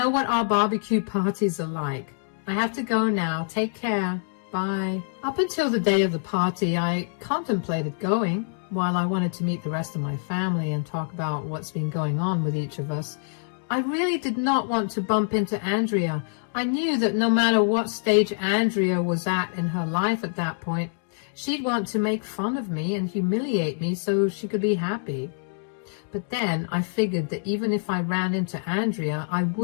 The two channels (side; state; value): right; silent; digital silence